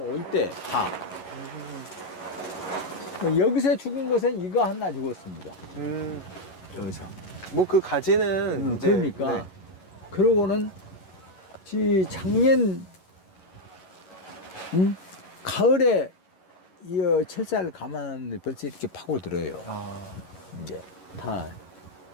때 다 여기서 죽은 것은 이거 하나 죽었습니다. 여기서. 뭐 그 가지는 이제 그러니까 네. 그러고는 작년 가을에 이 철사를 감았는데 벌써 이렇게 파고들어요. 이제 다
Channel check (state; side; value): late; right; 11 ms